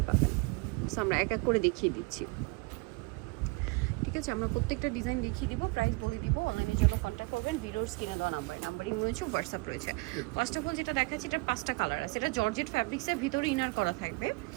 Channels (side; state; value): left; quieter; 27.3 dB